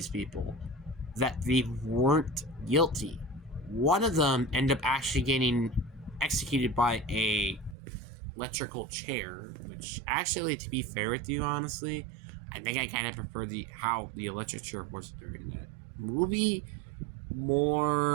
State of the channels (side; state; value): left; drops out; at 7.8 s